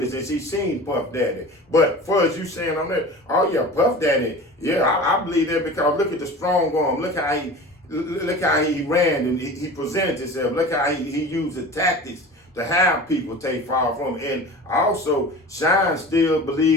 and she seen Puff Daddy. But for as you saying on that, oh yeah, Puff Daddy, yeah, I believe that, because look at the strong arm. Look how he ran and he presented himself. Look how he used the tactics to have people take fall from him. And also, Shine still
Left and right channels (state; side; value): normal; both; correlation 0.36